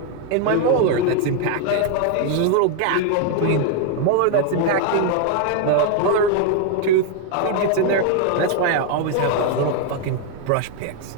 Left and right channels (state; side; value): different; both; correlation 0.01